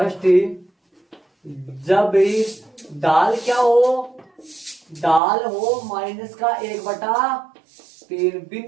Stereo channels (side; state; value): left; drops out; at 5.2 s